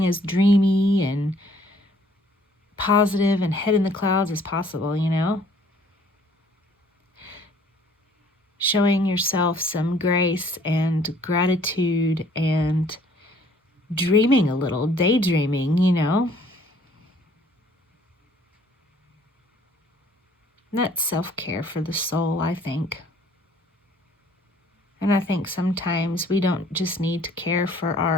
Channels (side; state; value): both; normal; correlation 0.58